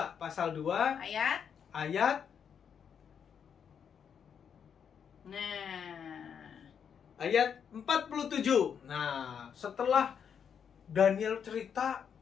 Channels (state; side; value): quieter; right; 7.5 dB